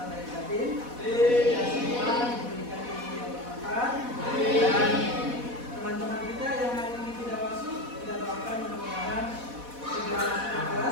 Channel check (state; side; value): late; left; 4.1 ms